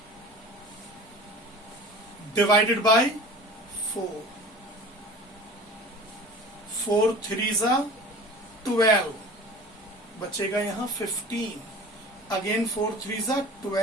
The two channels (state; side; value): normal; both; correlation 0.40